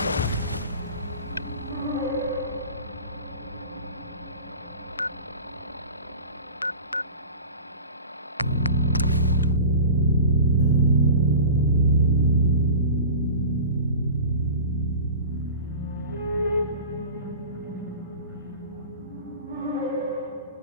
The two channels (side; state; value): both; inverted; correlation -0.36